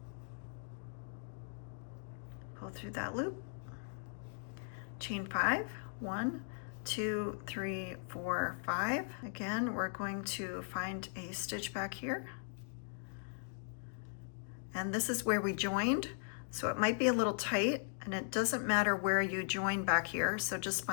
that loop. Chain 5, 1, 2, 3, 4, 5. Again, we're going to find a stitch back here. And this is where we joined, so it might be a little tight, and it doesn't matter where you join back here, so just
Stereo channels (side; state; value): right; silent; digital silence